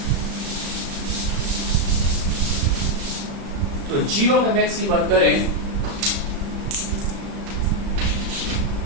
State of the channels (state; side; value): late; left; 36 ms